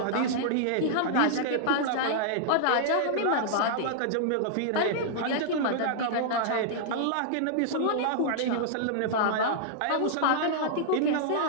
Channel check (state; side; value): different; both; correlation -0.01